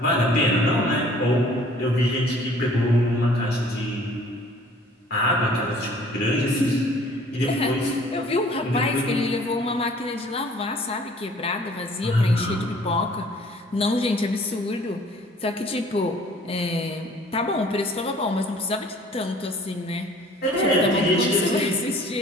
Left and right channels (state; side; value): normal; both; correlation 0.53